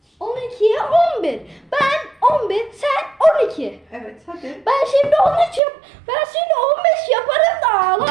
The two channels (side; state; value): left; drops out; at 5.6 s